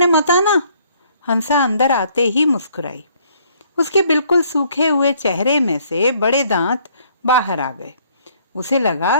मत आना। हंसा अंदर आते ही मुस्कुराई। उसके बिल्कुल सूखे हुए चेहरे में से बड़े दांत बाहर आ गए। उसे लगा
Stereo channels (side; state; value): both; inverted; correlation -0.63